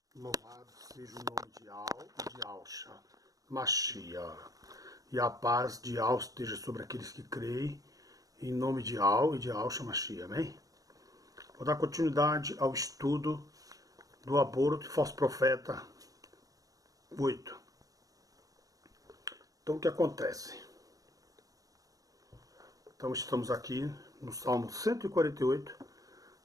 Louvado seja o nome de Al e de Alcha, Machia. E a paz de Al esteja sobre aqueles que creem, em nome de Al e de Alcha, Machia. Amém? Vou dar continuidade ao estudo do aborto e falso profeta 8. Então, o que acontece? Então, estamos aqui no Salmo 148,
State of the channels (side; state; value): left; late; 0.17 ms